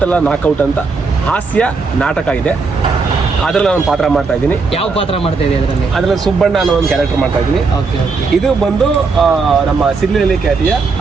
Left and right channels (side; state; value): left; quieter; 4.4 dB